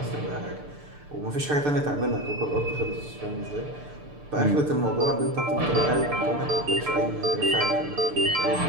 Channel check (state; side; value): late; left; 6.8 ms